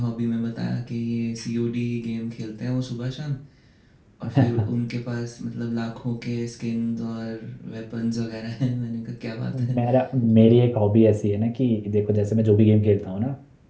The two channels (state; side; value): identical; both; correlation 1.00